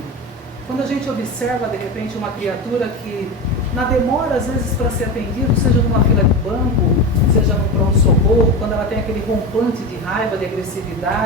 Quando a gente observa, de repente, uma criatura que, na demora, às vezes, para ser atendido, seja numa fila de banco, seja no pronto-socorro, quando ela tem aquele rompante de raiva, de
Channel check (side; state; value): both; normal; correlation 0.23